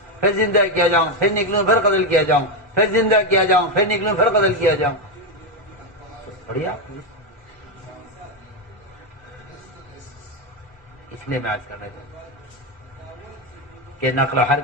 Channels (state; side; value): normal; both; correlation 0.07